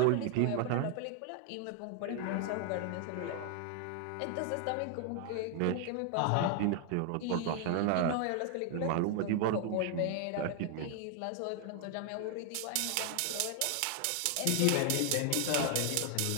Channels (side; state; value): both; different; correlation 0.00